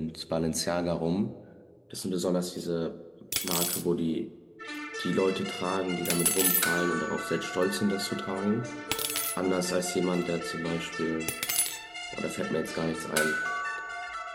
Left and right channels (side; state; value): both; identical; correlation 1.00